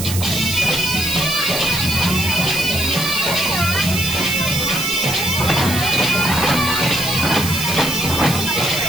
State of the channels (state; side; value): noise; right; hiss, 6 dB below the sound